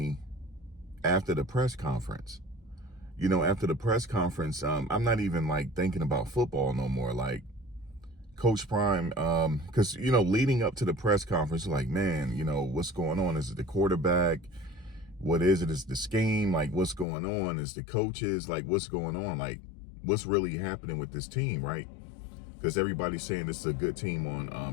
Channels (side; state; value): right; drops out; at 17.1 s